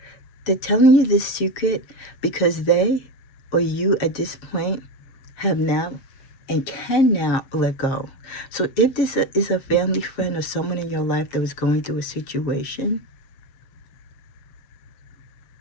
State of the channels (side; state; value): right; late; 7.6 ms